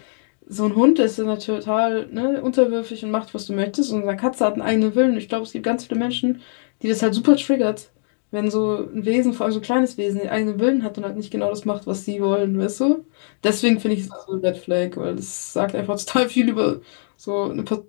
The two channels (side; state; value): right; silent; digital silence